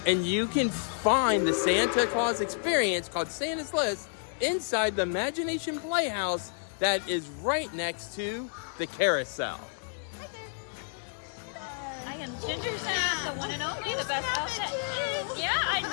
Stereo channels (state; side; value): silent; right; digital silence